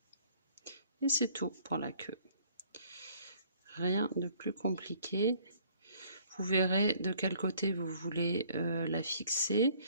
Et c'est tout pour la queue. Rien de plus compliqué. Vous verrez de quel côté vous voulez la fixer.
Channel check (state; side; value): inverted; both; correlation -0.59